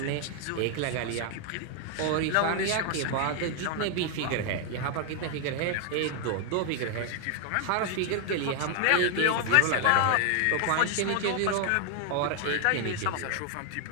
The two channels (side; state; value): both; different; correlation 0.00